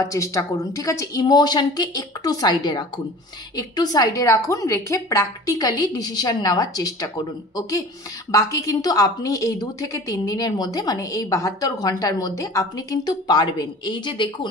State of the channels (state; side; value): normal; both; correlation 0.42